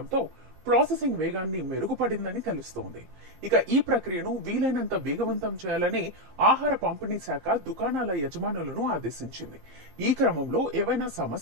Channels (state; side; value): late; left; 15 ms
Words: ప్రాసెసింగ్ వేగాన్ని మెరుగుపడిందని తెలుస్తోంది. ఇక ఈ ప్రక్రియను వీలైనంత వేగవంతం చేయాలని ఆహార పంపిణీ శాఖ దుకాణాల యజమానులను ఆదేశించింది. ఈ క్రమంలో ఏవైనా